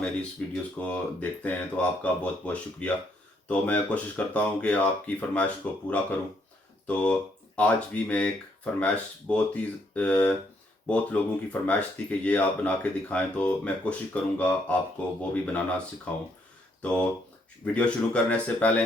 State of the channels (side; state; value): both; normal; correlation 0.72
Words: मेरी इस वीडियोस को देखते हैं, तो आपका बहुत बहुत शुक्रिया। तो मैं कोशिश करता हूँ कि आपकी फरमाइश को पूरा करूँ। तो आज भी मैं एक फरमाइश बहुत लोगों की फरमाइश थी कि ये आप बना के दिखाएं, तो मैं कोशिश करूँगा आपको वो भी बनाना सिखाऊं। तो वीडियो शुरू करने से पहले